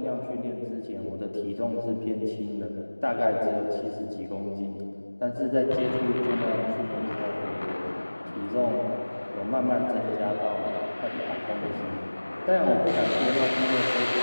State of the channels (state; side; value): inverted; both; correlation -1.00